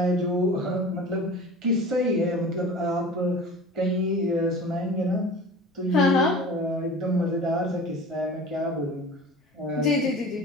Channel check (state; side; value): normal; both; correlation 0.38